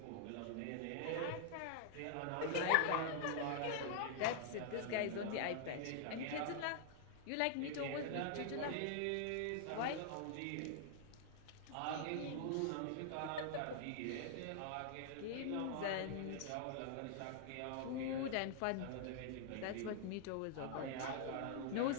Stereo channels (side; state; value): both; different; correlation -0.01